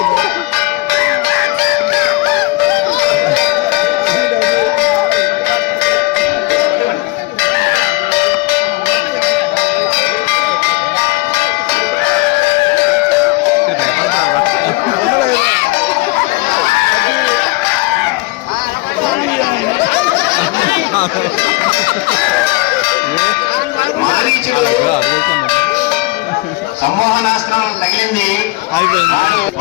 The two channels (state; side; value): quieter; right; 22.7 dB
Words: మారీచుడు సమ్మోహనాస్త్రం తగిలింది,